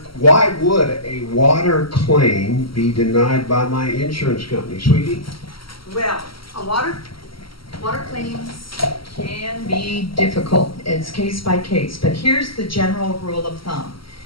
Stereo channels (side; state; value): right; late; 0.74 ms